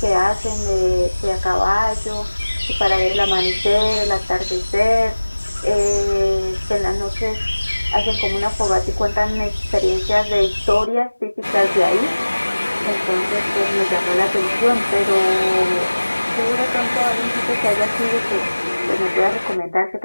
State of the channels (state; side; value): inverted; both; correlation -1.00